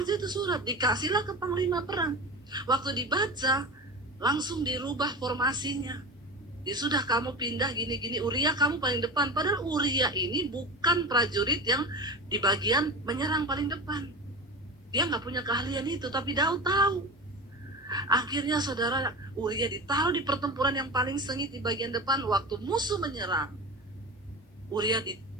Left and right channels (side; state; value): both; normal; correlation 0.28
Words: itu surat, dikasihlah ke panglima perang. Waktu dibaca, langsung dirubah formasinya. Ya sudah, kamu pindah gini-gini, Uria kamu paling depan. Padahal Uria ini bukan prajurit yang di bagian menyerang paling depan. Dia nggak punya keahlian itu, tapi Daud tahu. Akhirnya saudara, Uria ditaruh di pertempuran yang paling sengit di bagian depan. Waktu musuh menyerang, Uria